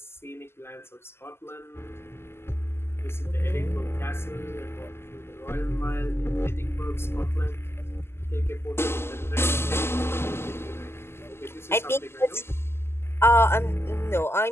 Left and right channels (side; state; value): right; late; 0.12 ms